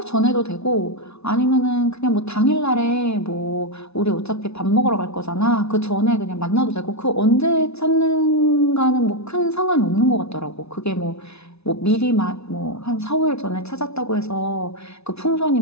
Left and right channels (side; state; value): right; late; 0.80 ms